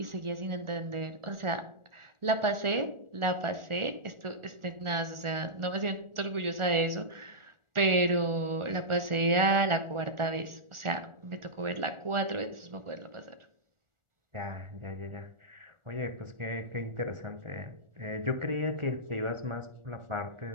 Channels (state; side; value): late; left; 1.4 ms